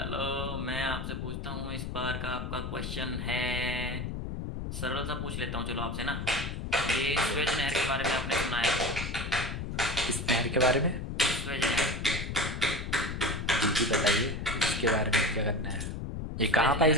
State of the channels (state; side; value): noise; left; rumble, 5 dB below the sound